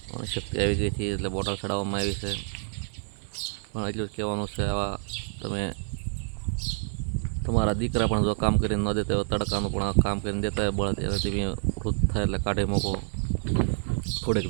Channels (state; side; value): silent; left; digital silence